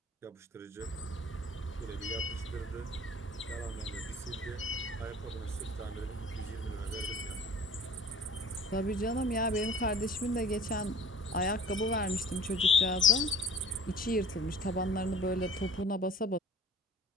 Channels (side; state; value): both; normal; correlation 0.47